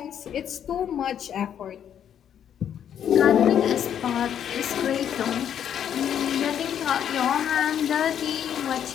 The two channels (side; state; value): right; quieter; 9.3 dB